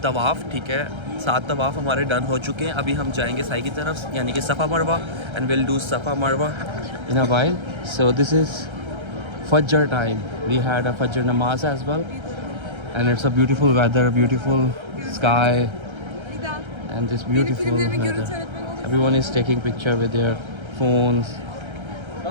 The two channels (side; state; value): left; late; 1.3 ms